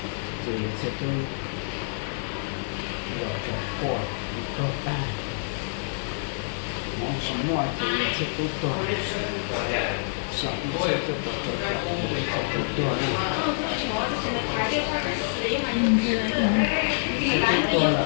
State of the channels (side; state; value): right; silent; digital silence